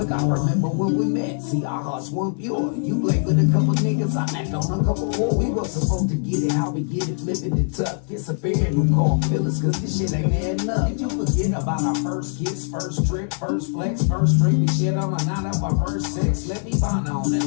I remember when we met, see our hearts weren't pure. You played with a couple niggas, I knocked on a couple more. We were supposed to get it, how we get it, flipping it tough. It's a pair who call feelings, cause this shit ain't adding up. Did you forget about our first kiss, first trip, first flex, first drink? We shit on a night of our first sex. Let me find on and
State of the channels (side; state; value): right; silent; 63 dB below the other